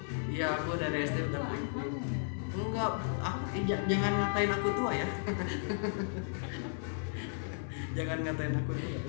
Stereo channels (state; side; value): silent; right; 55 dB below the other